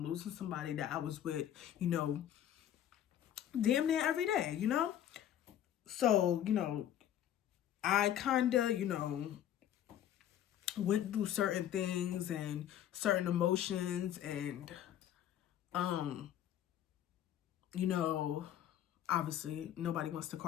losing somebody that I was with, you know, damn near every day, you know? So, you know, I kind of, you know, went through certain things and certain emotions and, you know, obviously nobody wants to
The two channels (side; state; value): right; quieter; 11.0 dB